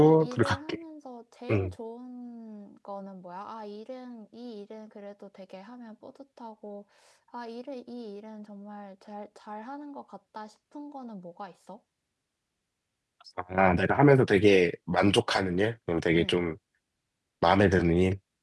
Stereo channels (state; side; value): identical; both; correlation 1.00